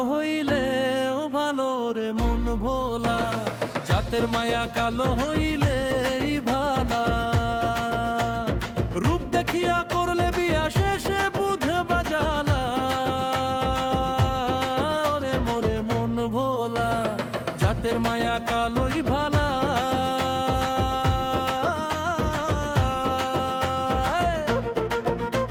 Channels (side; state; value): both; identical; correlation 1.00